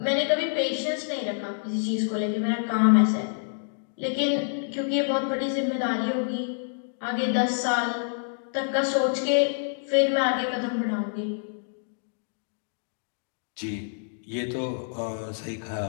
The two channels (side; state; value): right; silent; digital silence